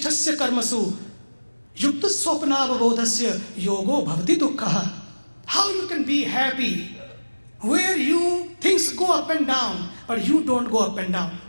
karmasu, yukta swapnavabodhasya yogo bhavati dukkha. How you can be happy where things go up and down, but you don't go up and down.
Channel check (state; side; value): inverted; both; correlation -1.00